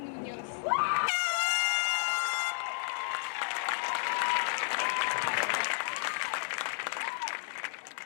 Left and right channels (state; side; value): silent; right; 56 dB below the other